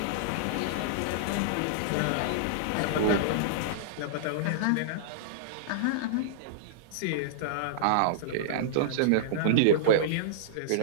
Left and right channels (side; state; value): both; different; correlation -0.02